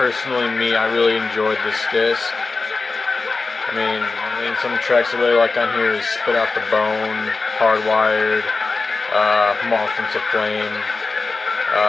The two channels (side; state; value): right; quieter; 3.9 dB